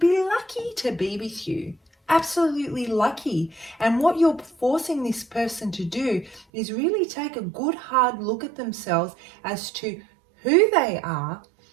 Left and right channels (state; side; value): drops out; left; at 6.5 s